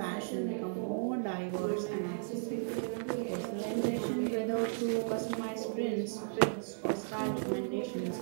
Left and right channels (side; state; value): left; silent; digital silence